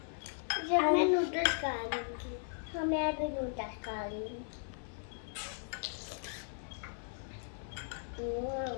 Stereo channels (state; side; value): silent; right; 53 dB below the other